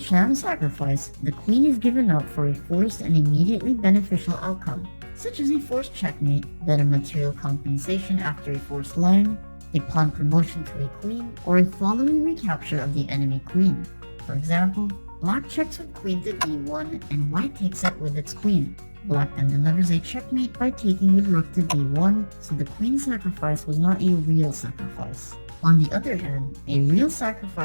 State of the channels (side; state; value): both; inverted; correlation -1.00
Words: sacrifice, the queen is given up for a forced and immediately beneficial outcome, such as a forced checkmate, better material compensation after a forced line, a pawn promotion to a queen, or a following recapture of the enemy queen. For example, black checks with queen to d1 and white takes it with its queen. Black then delivers a checkmate by taking with rook to d1, so the queen sacrifice was not a real sacrifice. On the other hand, a real